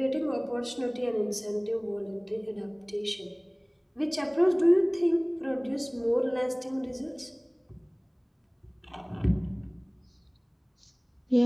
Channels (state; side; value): identical; both; correlation 1.00